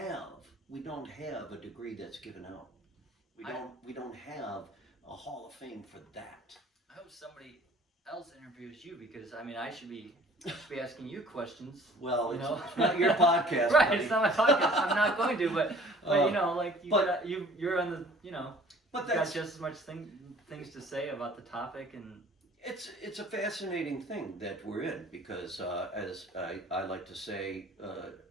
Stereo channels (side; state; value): both; normal; correlation 0.51